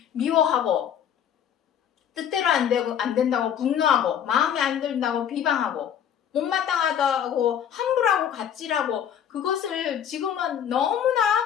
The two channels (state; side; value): quieter; right; 9.1 dB